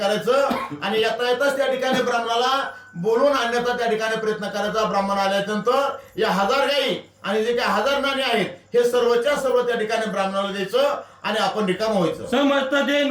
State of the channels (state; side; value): identical; both; correlation 1.00